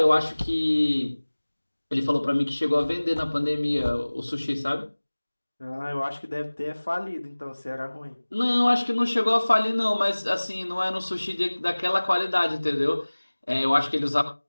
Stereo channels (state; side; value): inverted; both; correlation -1.00